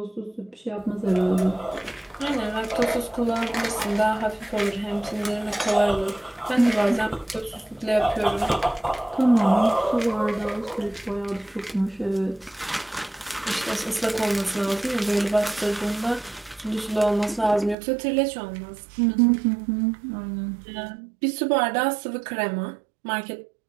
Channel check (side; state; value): left; drops out; at 17.8 s